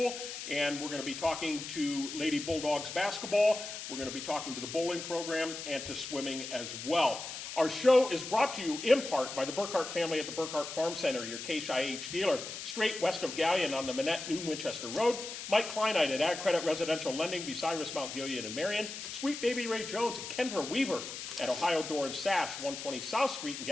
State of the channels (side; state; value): left; noise; hiss, 8 dB below the sound